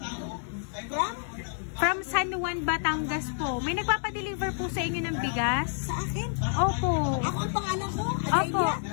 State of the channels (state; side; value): silent; right; digital silence